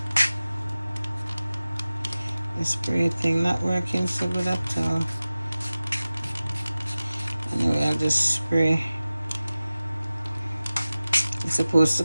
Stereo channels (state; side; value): inverted; both; correlation -0.97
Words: The spray thing not working so good at all. Anyway, I'll just spray. It's supposed to